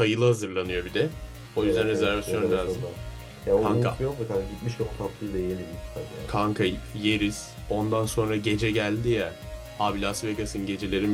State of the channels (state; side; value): identical; both; correlation 1.00